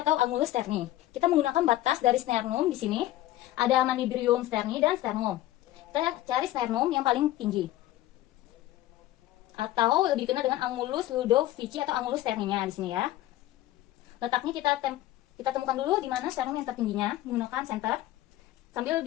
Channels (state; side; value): quieter; right; 15.0 dB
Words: atau angulus sterni. Kita menggunakan batas dari sternum di sini. Ada manubrium sterni dan sternum. Kita cari sternum yang paling tinggi, atau lebih dikenal dengan angulus ludovici atau angulus sterninya di sini ya. Letaknya kita temukan dulu di mana sternum yang tertingginya menggunakan senter sambil